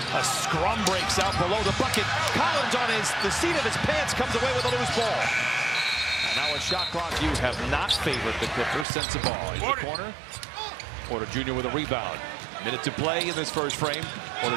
A scrum breaks out below the bucket. Collins on the seat of his pants comes away with a loose ball. And now a shot clock. You have not favored the Clippers. Sensabaugh in the corner. Porter Jr. with a rebound. Minute to play in this first frame. Porter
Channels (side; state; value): left; drops out; at 8.8 s